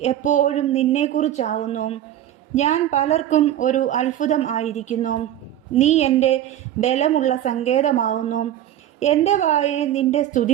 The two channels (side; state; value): left; quieter; 11.8 dB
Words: എപ്പോഴും നിന്നെക്കുറിച്ചാവുന്നു. ഞാൻ പലർക്കും ഒരു അത്ഭുതം ആയിരിക്കുന്നു. നീ എൻ്റെ ബലമുള്ള സങ്കേതമാവുന്നു. എൻ്റെ വായെ നിൻ്റെ